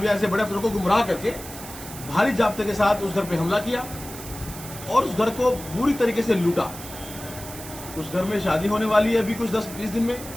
या ऐसे बड़े अफसरों को गुमराह करके भारी जाब्ते के साथ उस घर पे हमला किया और उस घर को बुरी तरीके से लूटा। उस घर में शादी होने वाली है अभी कुछ 10-20 दिन में,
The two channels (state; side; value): noise; right; hiss, 13 dB below the sound